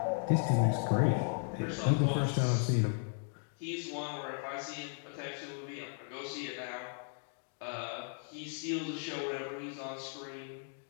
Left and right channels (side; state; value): right; silent; 54 dB below the other